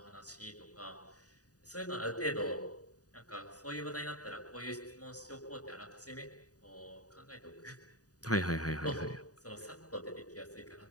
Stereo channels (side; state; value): right; late; 0.68 ms